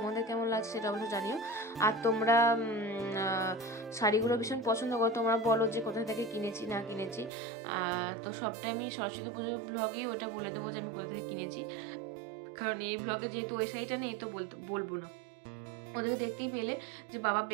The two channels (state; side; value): drops out; left; at 7.3 s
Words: কেমন লাগছে সেটা অবশ্যই জানিও। আর তোমরা শাড়িগুলো ভীষণ পছন্দ করো, তোমরা বলো যে কোথা থেকে কিনেছি না কিনেছি। তো সবটাই আমি সরস্বতী পুজোর ব্লগেই ওটা বলে দেবো যে আমি কোথা থেকে কিনেছি। কারণ এই ব্লগে যেহেতু ওই শাড়িটা নেই তো বলবো না। ওদেরকে দেখতেই পেলে যে বাবা